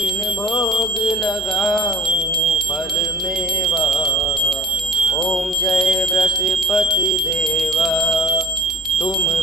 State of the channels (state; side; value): normal; both; correlation 0.47